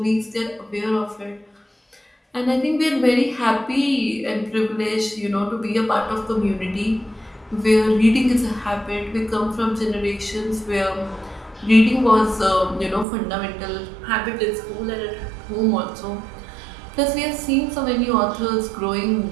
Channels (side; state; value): left; drops out; at 13.1 s